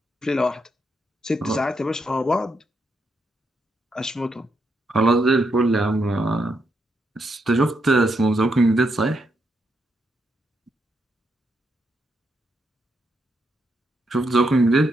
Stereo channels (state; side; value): normal; both; correlation 0.80